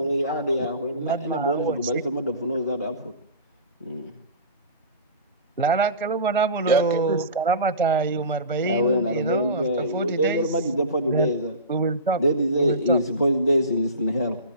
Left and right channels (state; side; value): inverted; both; correlation -0.32